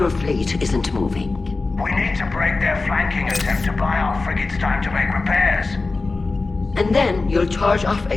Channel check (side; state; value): right; quieter; 3.7 dB